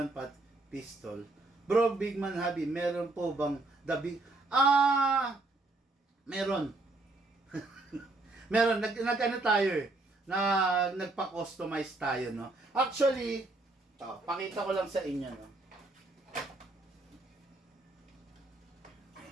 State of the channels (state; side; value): quieter; left; 3.0 dB